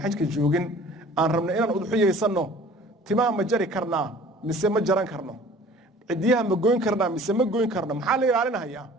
xajka joogin aan rabno inaan udxiyeysanno timaa ma jari karnaa mise ma jaran karno cidiyaha ma goyn karnaa mise ma goyn karno maxaa la ilaalinayaa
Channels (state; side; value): normal; both; correlation 0.48